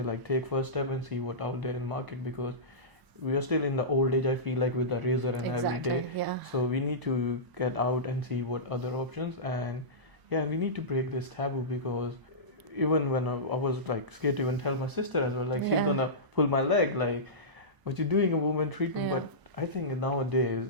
like, take first step and see what out there in market, because we are still in the old age, I feel like, with the razor and every day. So we need to get out and see what other options, and we need to break this taboo, because even when I was like scared to even tell my sister as well, like she's gonna pull my leg, like, what you doing a woman treatment? But I think nowadays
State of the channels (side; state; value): left; late; 1.0 ms